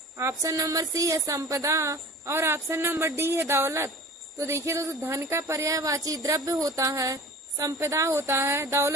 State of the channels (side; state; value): both; normal; correlation 0.41